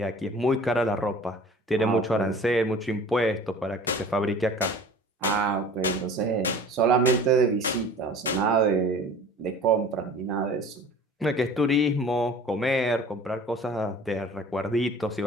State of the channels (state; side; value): normal; both; correlation 0.44